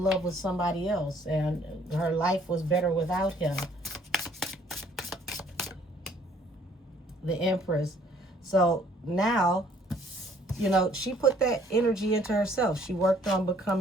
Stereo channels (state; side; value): normal; both; correlation 0.61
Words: love with somebody else and her life was better without him. The Empress. So now, you know, she put that energy into herself. She worked on